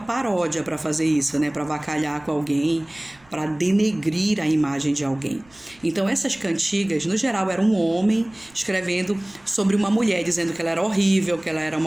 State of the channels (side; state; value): right; noise; rumble, 30 dB below the sound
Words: para fazer isso, né? Para avacalhar com alguém, para denegrir a imagem de alguém. Então, essas cantigas, no geral, era um homem escrevendo sobre uma mulher, dizendo que ela era horrível, que ela era